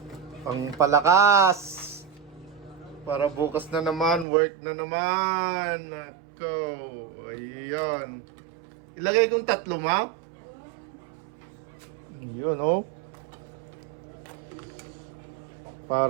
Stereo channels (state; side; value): drops out; left; at 4.2 s